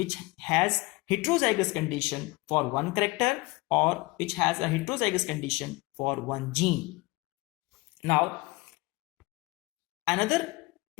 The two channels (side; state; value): right; quieter; 23.2 dB